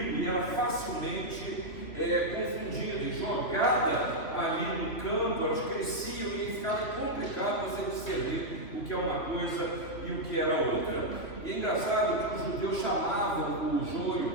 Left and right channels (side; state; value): right; late; 3.1 ms